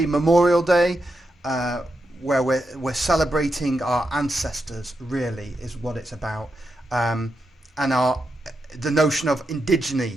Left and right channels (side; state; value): both; normal; correlation 0.86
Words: Memorial Day, where we're celebrating our ancestors, really, is what it's about. And the notion of indigeneity